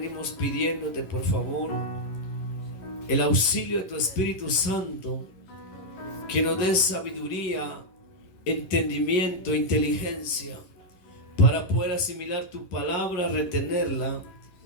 pidiéndote, por favor, el auxilio de tu Espíritu Santo, que nos dé sabiduría, entendimiento, inteligencia, para poder asimilar tu palabra, retenerla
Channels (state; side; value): late; right; 11 ms